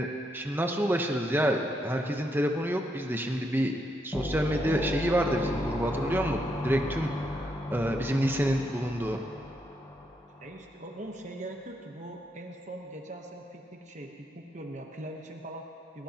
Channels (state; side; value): normal; both; correlation 0.78